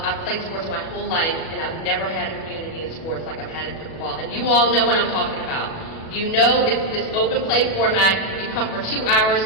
played sports my whole life, and I've never had a community in sports like I've had in pickleball. And you all know what I'm talking about. You know it's this open play format. You come for 2 hours,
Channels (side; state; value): right; late; 37 ms